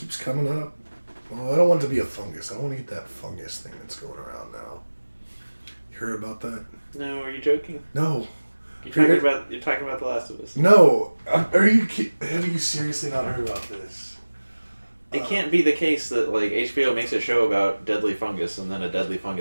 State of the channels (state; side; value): inverted; both; correlation -1.00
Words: coming up, well, I don't want it to be a fungus. I don't want to get that fungus thing that's going around now. You heard about that? No, are you joking? No. You're talking about The Last of Us. No. Have you seriously not heard about this? It can't be the case that like HBO makes a show about deadly fungus and then a deadly